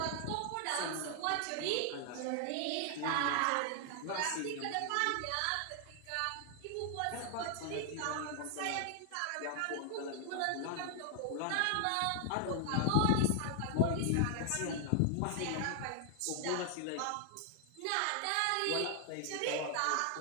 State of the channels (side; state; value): both; different; correlation 0.00